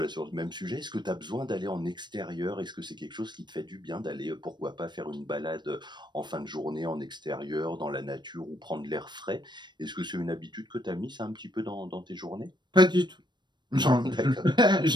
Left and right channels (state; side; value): late; left; 0.22 ms